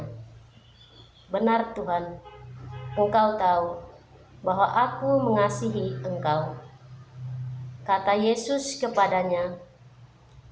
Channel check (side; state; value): both; identical; correlation 1.00